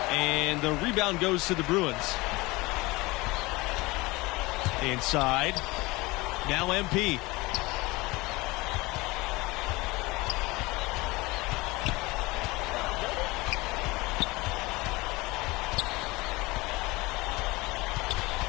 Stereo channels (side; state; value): right; quieter; 22.5 dB